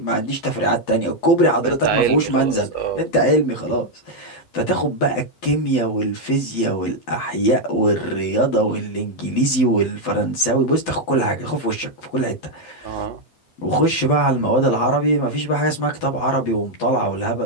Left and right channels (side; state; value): right; late; 12 ms